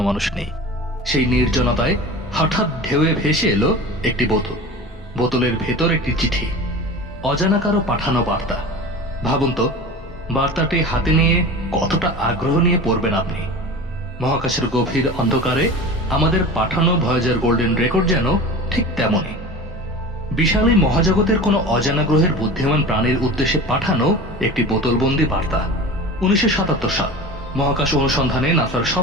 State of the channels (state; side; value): normal; both; correlation 0.34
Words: নেই। সেই নির্জনতায় হঠাৎ ঢেউয়ে ভেসে এলো একটি বোতল। বোতলের ভেতর একটি চিঠি, অজানা কারো পাঠানো বার্তা। ভাবুন তো, বার্তাটি হাতে নিয়ে কতটা আগ্রহ নিয়ে পড়বেন আপনি। মহাকাশের গভীর অন্ধকারে আমাদের পাঠানো ভয়েজার গোল্ডেন রেকর্ড যেন ঠিক তেমনই। বিশাল এই মহাজগতের কোনো অজানা গ্রহের বুদ্ধিমান প্রাণীর উদ্দেশ্যে পাঠানো একটি বোতলবন্দি বার্তা। 1977 সাল মহাকাশ অনুসন্ধানে নাসার